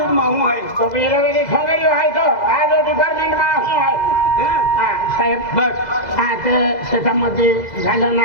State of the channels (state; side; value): late; right; 2.0 ms